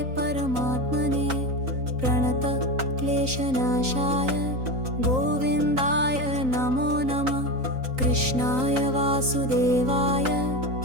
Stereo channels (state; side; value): late; left; 3.9 ms